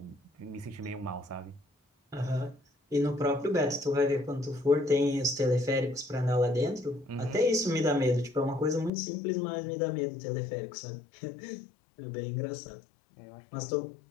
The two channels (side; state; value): right; drops out; at 8.9 s